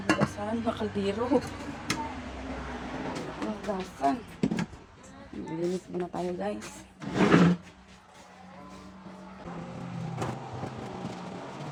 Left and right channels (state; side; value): identical; both; correlation 1.00